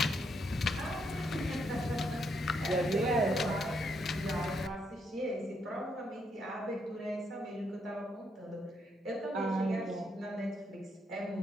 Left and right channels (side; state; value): both; normal; correlation 0.76